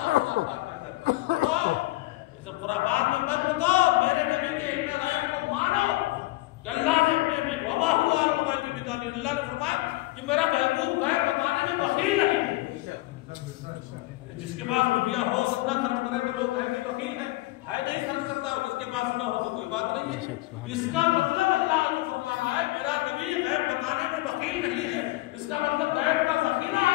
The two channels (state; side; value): quieter; right; 19.8 dB